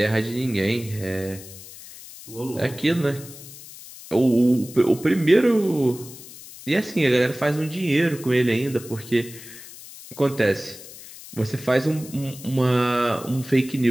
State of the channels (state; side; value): noise; left; hiss, 16 dB below the sound